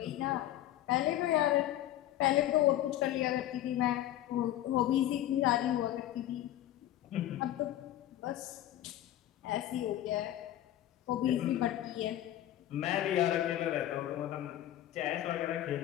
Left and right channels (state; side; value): quieter; right; 13.1 dB